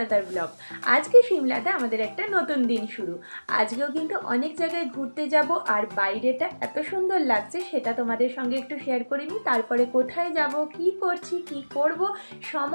blog. আজকে সিমলাতে আমাদের একটা নতুন দিন শুরু। আজকেও কিন্তু অনেক জায়গায় ঘুরতে যাব, আর বাইরেটা এত সুন্দর লাগছে সেটা তোমাদের সঙ্গে একটু শেয়ার করিনি। তারপরে কোথায় যাব, কি করছি, কি করব,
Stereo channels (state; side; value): inverted; both; correlation -1.00